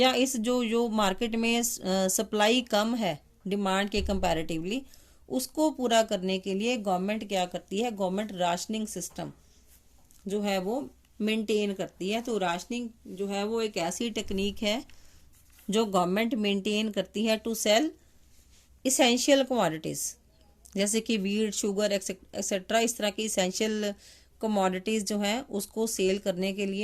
इस जो मार्केट में सप्लाई कम है डिमांड के कंपैरेटिवली, उसको पूरा करने के लिए गवर्नमेंट क्या करती है, गवर्नमेंट राशनिंग सिस्टम जो है वो मेंटेन करती है। तो राशनिंग जो है वो एक ऐसी टेक्निक है जो गवर्नमेंट मेंटेन करती है टू सेल इसेंशियल कमोडिटीज, जैसे कि वीट, शुगर एक्सेट्रा, इस तरह की इसेंशियल कमोडिटीज जो है उसको सेल करने के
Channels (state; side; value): identical; both; correlation 1.00